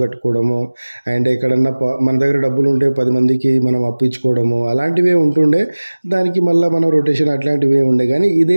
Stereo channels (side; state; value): both; inverted; correlation -1.00